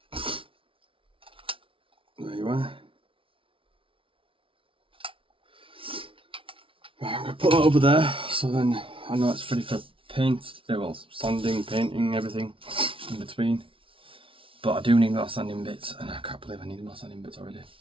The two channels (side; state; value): left; late; 0.25 ms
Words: There you are. Right, I'm going to put that over there, so then I know it's ready for paint, well, sanding, painting, everything in between. But I do need more sanding bits, and I can't believe I need more sanding bits already.